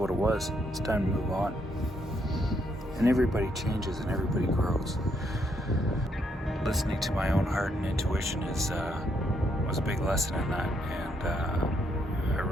it was. It's time to move on. And everybody changes and everybody grows. Listening to my own heart and intuition was a big lesson in that, and I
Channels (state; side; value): normal; both; correlation 0.75